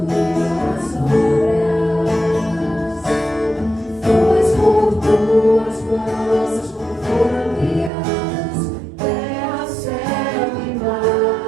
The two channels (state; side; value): drops out; left; at 7.9 s